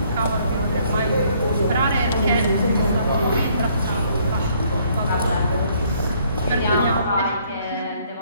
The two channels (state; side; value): inverted; both; correlation -0.65